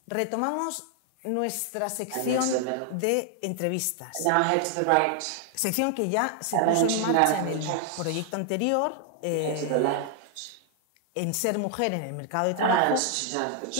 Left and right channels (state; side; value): different; both; correlation 0.00